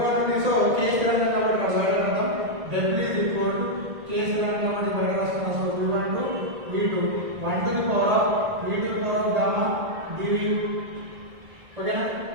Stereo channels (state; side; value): late; left; 1.9 ms